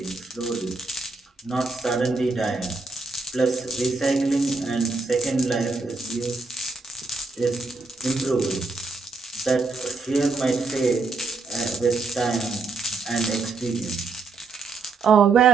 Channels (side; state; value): left; quieter; 4.0 dB